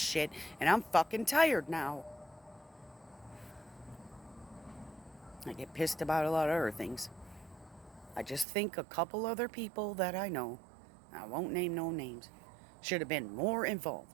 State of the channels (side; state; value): left; drops out; at 8.5 s